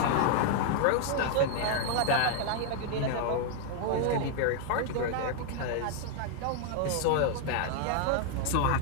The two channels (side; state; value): both; different; correlation 0.00